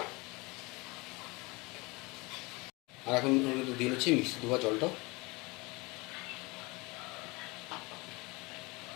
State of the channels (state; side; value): quieter; right; 25.1 dB